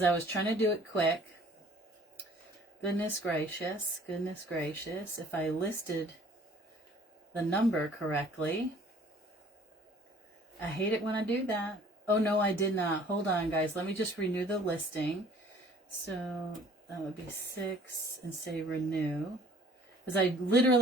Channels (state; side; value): normal; both; correlation 0.53